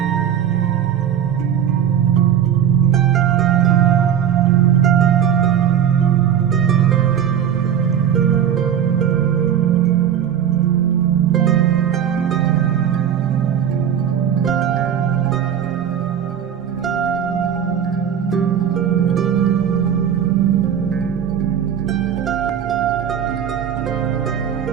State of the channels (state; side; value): quieter; left; 9.2 dB